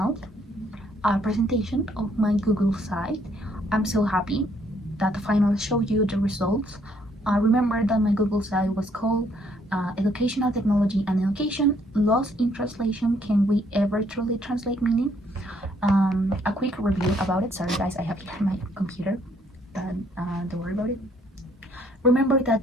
presentation of my Google site. I'm so happy that the final showed you the results. Remember that my Google site was called Educational Technology and Education Lost in Translation. Can we ever truly translate meaning? A quick review about it. Sorry guys, I have here my computer, but don't worry about it. Remember that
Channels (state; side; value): normal; both; correlation 0.67